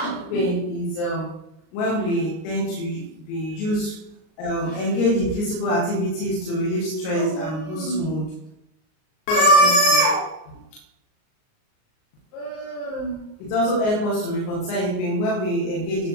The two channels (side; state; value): right; late; 38 ms